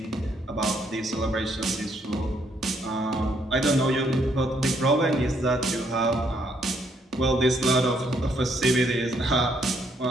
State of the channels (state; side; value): normal; both; correlation 0.71